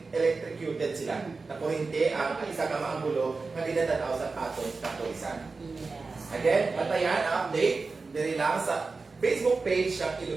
electrocuted sila. Na kurente ang isa ka maanggulo nga ginatanaw sa atong kapulisan. Again, patayan ang update diri lang sa Facebook page ng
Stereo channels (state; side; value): quieter; left; 4.1 dB